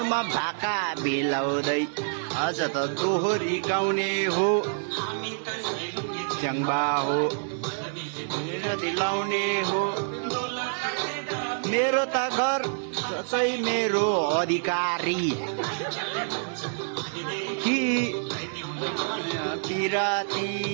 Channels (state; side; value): silent; left; digital silence